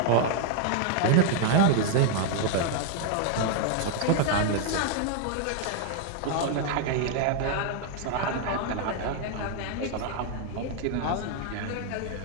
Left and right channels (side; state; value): both; different; correlation 0.00